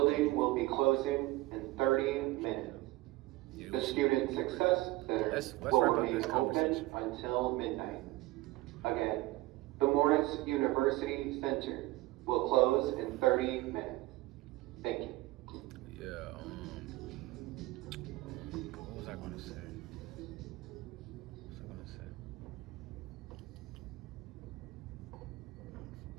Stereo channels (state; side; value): quieter; left; 18.9 dB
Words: will be closing in 30 minutes. Yeah, The Student Success Center let's will wrap up remain this open conversation. until midnight. Again, the Morris University Center will close in 30 minutes. Thank you. Yeah, what was I gonna say?